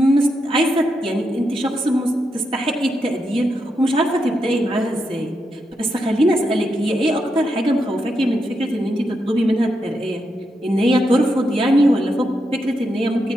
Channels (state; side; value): normal; both; correlation 0.84